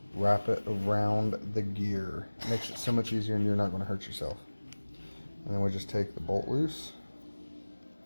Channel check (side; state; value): both; inverted; correlation -1.00